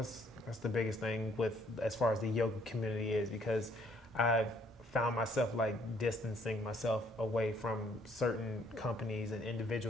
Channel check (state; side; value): normal; both; correlation 0.65